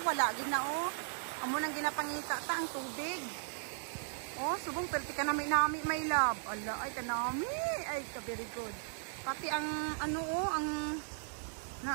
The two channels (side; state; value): left; silent; 53 dB below the other